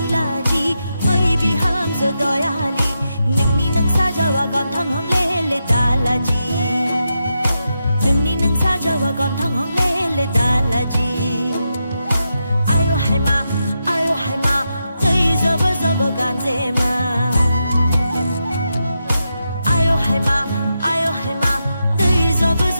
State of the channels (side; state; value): both; inverted; correlation -0.86